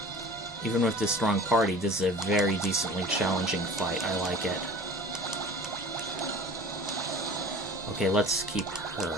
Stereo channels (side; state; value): both; normal; correlation 0.42